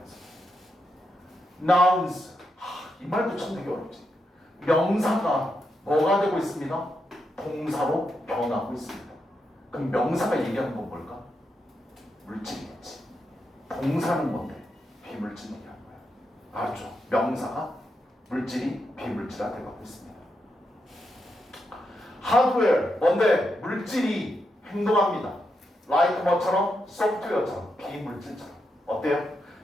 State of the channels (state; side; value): normal; both; correlation 0.84